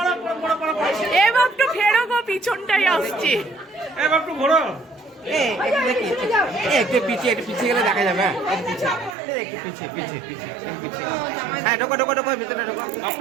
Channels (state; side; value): drops out; left; at 9.2 s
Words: এ বাপটু ফেরো গো, পিছনটাই আসছে। এ বাপটু ঘোরো। একটু পিছিয়ে গেলে দেখা যাবে। হ্যাঁ একটু পিছিয়ে। হ্যাঁ ঢোকো ভিতরে ঢোকো।